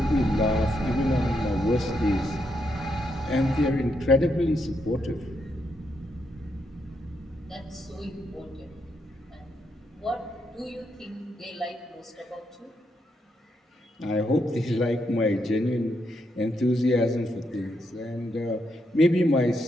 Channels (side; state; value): both; normal; correlation 0.80